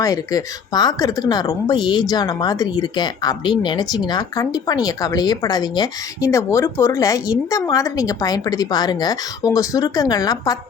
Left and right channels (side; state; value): right; quieter; 6.4 dB